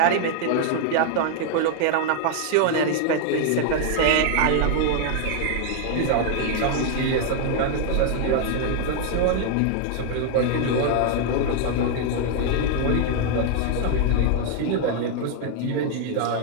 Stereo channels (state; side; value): different; both; correlation 0.00